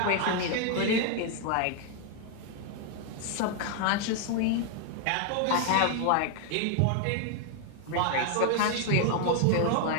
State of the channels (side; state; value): both; different; correlation 0.00